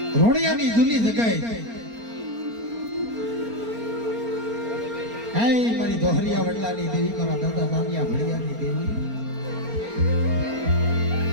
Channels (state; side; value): late; left; 4.4 ms